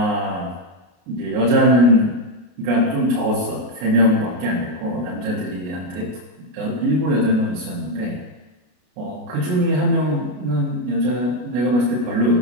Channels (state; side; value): late; left; 33 ms